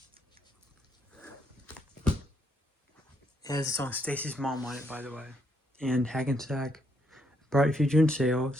It has the song Stacy's Mom on it, by the way, and Hackensack, Bright Future in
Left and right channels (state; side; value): normal; both; correlation 0.74